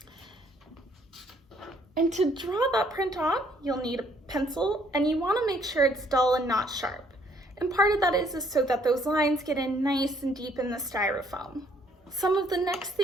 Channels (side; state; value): both; normal; correlation 0.65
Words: And to draw that print on, you'll need a pencil, and you want to make sure it's dull and not sharp. And part of that is so that those lines get in nice and deep in the styrofoam. Some of the next